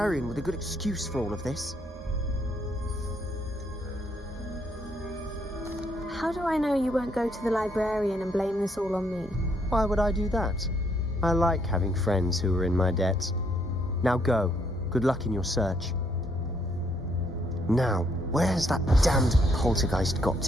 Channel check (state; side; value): normal; both; correlation 0.71